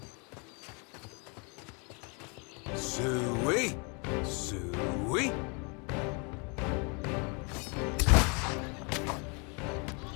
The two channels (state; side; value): quieter; right; 33.4 dB